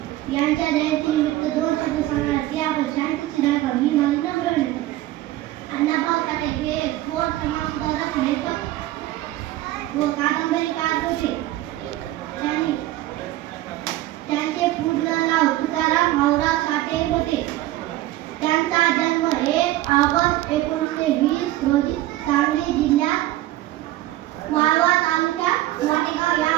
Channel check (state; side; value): quieter; left; 15.7 dB